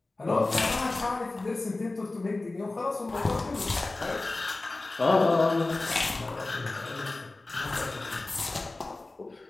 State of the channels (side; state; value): right; quieter; 3.1 dB